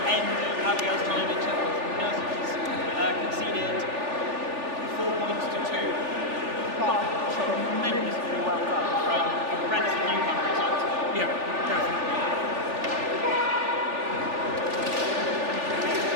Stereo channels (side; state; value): left; late; 3.4 ms